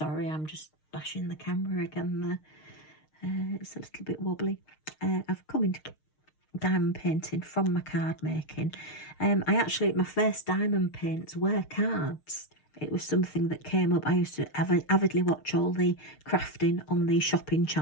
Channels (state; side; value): late; right; 6.5 ms